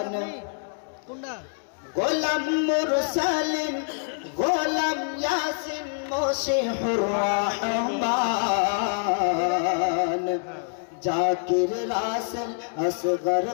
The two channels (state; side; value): silent; right; digital silence